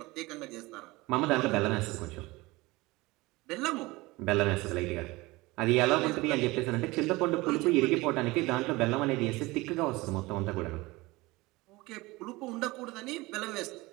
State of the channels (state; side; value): quieter; left; 21.7 dB